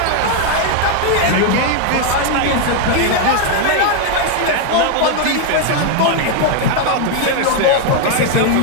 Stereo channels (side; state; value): both; different; correlation 0.00